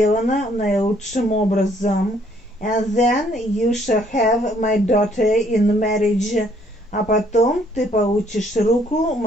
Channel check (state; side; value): normal; both; correlation 0.65